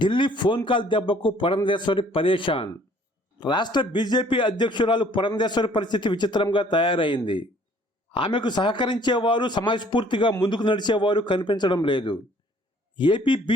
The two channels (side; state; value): both; normal; correlation 0.57